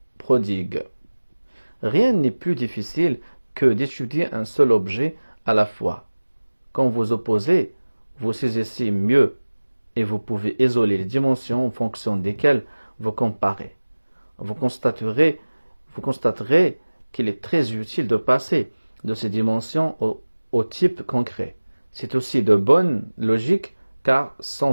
prodigue. Rien n'est plus difficile que d'étudier un seul objet à la fois. Quand vous opposez, vous saisissez mieux et vous pouvez isoler les dimensions en fonction desquelles vous comparez. Vous constaterez qu'il est très utile de passer de ces dimensions au type concret. C'est aussi de bonne logique car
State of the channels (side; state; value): both; inverted; correlation -1.00